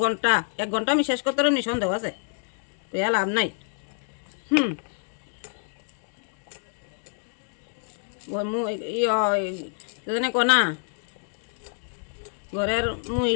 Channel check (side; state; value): right; silent; 60 dB below the other